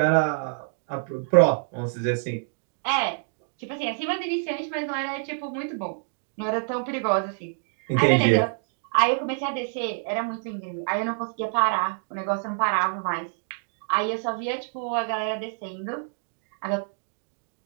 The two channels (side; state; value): left; silent; digital silence